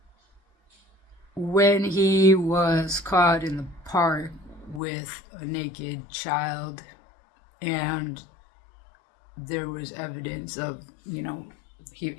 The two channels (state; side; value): drops out; right; at 4.8 s